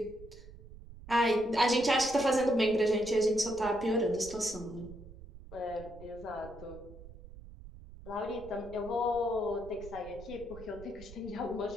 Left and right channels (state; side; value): noise; right; rumble, 16 dB below the sound